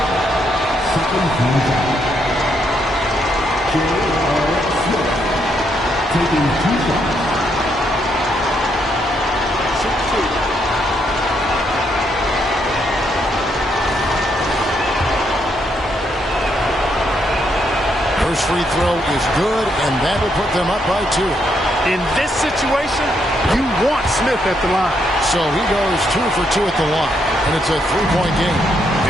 Taking 2 shots. First free throw is good, and that will put them up by 2. In this situation, you want Smith at the line. So he goes 2 for 2 at the line, and it's a 3-point game.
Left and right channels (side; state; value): both; normal; correlation 0.76